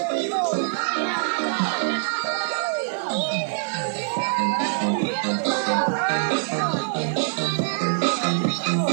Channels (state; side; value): silent; left; digital silence